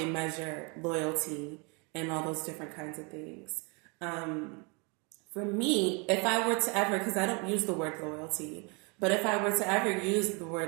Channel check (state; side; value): quieter; left; 31.9 dB